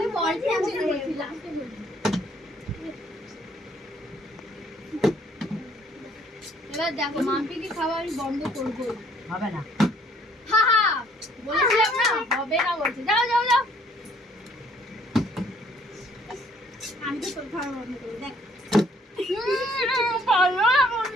বলছি লাস্টে বলছি এবার দেখো মাম্পি কি খাওয়া আমি বন্ধ করবো হবে না হা হা বলেছিলাম না হবে না বলছে যাও যাও যাও আমি তো তোর খাওয়া বন্ধ করবো দেখ ভালো না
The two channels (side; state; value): both; normal; correlation 0.62